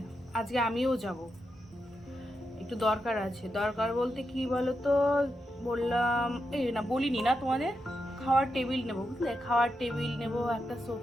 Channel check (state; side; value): normal; both; correlation 0.86